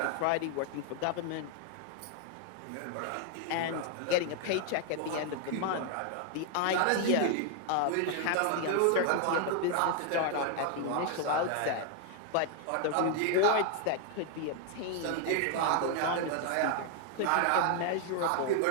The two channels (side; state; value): both; different; correlation 0.00